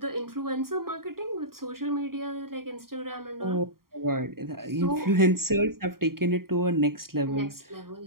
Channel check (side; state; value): left; late; 0.93 ms